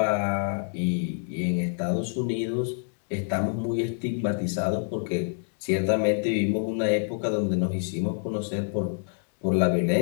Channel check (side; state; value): right; silent; 60 dB below the other